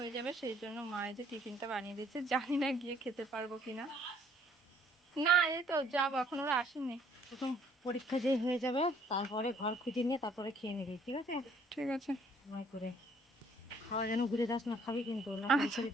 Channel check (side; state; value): both; normal; correlation 0.61